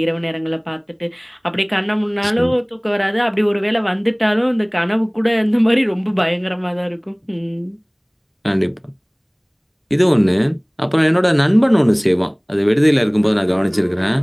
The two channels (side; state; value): both; identical; correlation 1.00